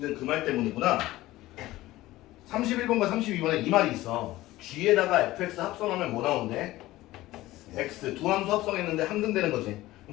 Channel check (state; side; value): quieter; right; 17.1 dB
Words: 그 말 때문이구나. 31번과 32번에 이 말이 있어. g에다가 fx 합성하면 뭐 나오는데? x. 두 함수 합성했는데 함등되는 거지.